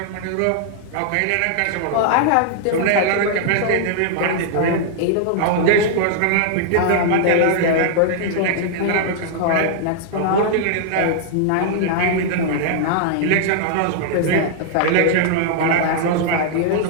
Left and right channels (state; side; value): different; both; correlation -0.01